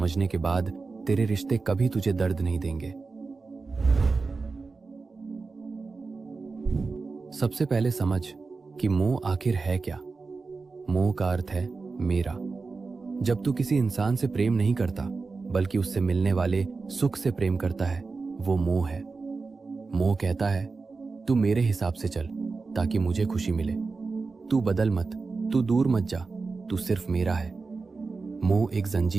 के बाद तेरे रिश्ते कभी तुझे दर्द नहीं देंगे। सबसे पहले समझ कि मोह आखिर है क्या। मोह का अर्थ है मेरा। जब तू किसी इंसान से प्रेम नहीं करता बल्कि उससे मिलने वाले सुख से प्रेम करता है, वो मोह है। मोह कहता है, तू मेरे हिसाब से चल ताकि मुझे खुशी मिले। तू बदल मत, तू दूर मत जा, तू सिर्फ मेरा है। मोह एक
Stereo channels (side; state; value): left; quieter; 4.2 dB